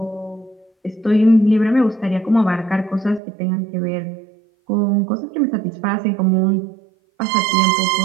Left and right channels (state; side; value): drops out; left; at 3.2 s